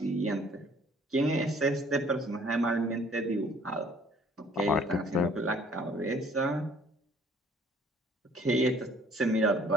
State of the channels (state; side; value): normal; both; correlation 0.57